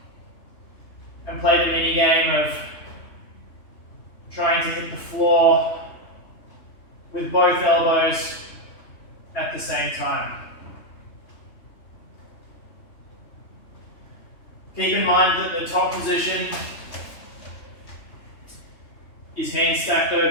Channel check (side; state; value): right; late; 3.2 ms